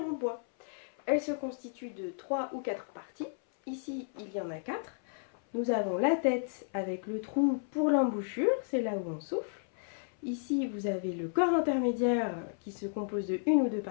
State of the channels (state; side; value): silent; right; 56 dB below the other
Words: bois. Elle se constitue de 3 ou 4 parties. Ici, il y en a 4. Nous avons la tête avec le trou pour l'embouchure, c'est là où on souffle. Ici, vous avez le corps intermédiaire qui se compose de 1 ou 2